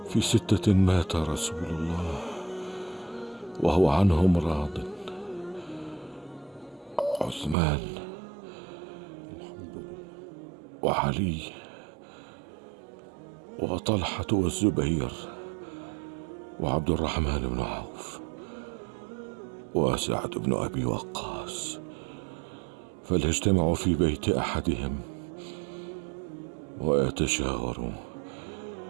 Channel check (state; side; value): drops out; left; at 7.6 s